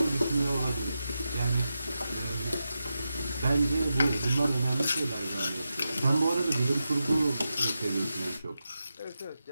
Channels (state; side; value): inverted; both; correlation -0.90